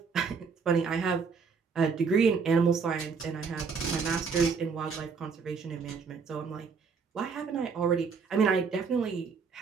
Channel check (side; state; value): left; quieter; 5.4 dB